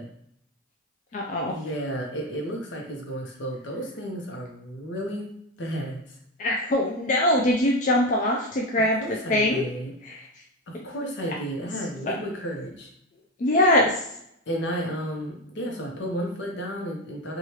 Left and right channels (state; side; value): normal; both; correlation 0.15